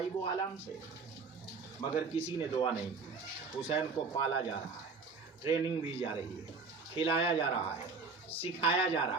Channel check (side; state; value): left; quieter; 4.6 dB